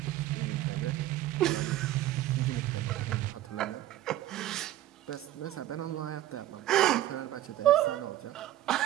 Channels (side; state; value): left; quieter; 13.9 dB